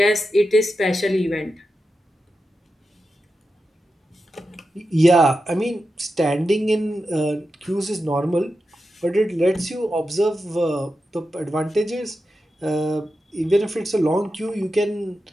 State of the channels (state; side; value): normal; both; correlation 0.90